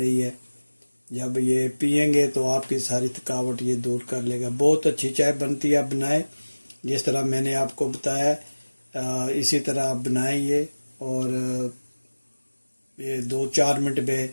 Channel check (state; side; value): inverted; both; correlation -1.00